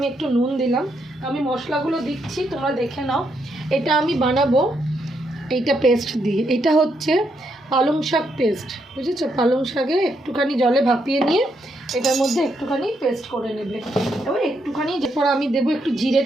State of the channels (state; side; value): normal; both; correlation 0.78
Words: একটু নুন দিলাম। আমি মশলাগুলো দিচ্ছি, তোমরা দেখে নাও। এটা আমি বানাবো এইটা পেস্ট দিয়ে, এটা হচ্ছে পালং শাক পেস্ট, বুঝেছো? পালং শাকে একটুখানি জলে ভাপিয়ে নিয়ে এটার মধ্যে একটুখানি পেস্ট করে নেবে। এবার একটুখানি, এরপর আমি দেবো একটু